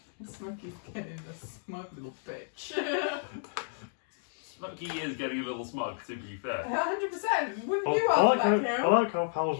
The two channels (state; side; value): silent; right; digital silence